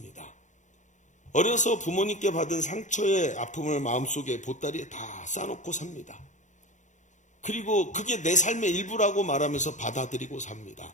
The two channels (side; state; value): right; late; 0.35 ms